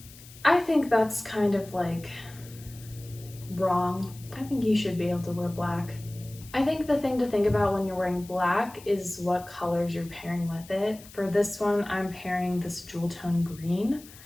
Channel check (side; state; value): left; noise; hiss, 20 dB below the sound